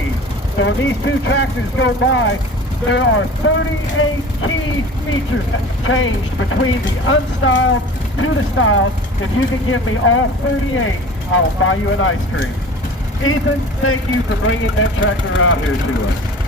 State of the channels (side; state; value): both; normal; correlation 0.40